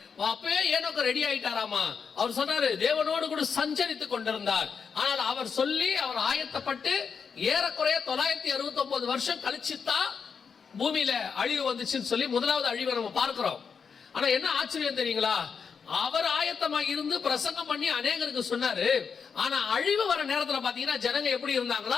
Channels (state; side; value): quieter; right; 6.1 dB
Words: அப்பவே ஏனோக்கு ரெடி ஆயிட்டாராமா. அவர் சொன்னாரு, தேவனோடு கூட சஞ்சரித்துக் கொண்டிருந்தார். ஆனால் அவர் சொல்லி அவர் ஆயத்தப்பட்டு ஏறக்குறைய 969 வருஷம் கழிச்சுதான் பூமியில அழிவு வந்துச்சுன்னு சொல்லி முதலாவது அழிவை நம்ம பார்க்கிறோம். ஆனா என்ன ஆச்சரியம் தெரியுங்களா, அவர் ஆயத்தமாக இருந்து பிரசங்கம் பண்ணி அநேகருக்கு சொன்னாரு. ஆனா அழிவு வர நேரத்துல பாத்தீங்கன்னா ஜனங்க எப்படி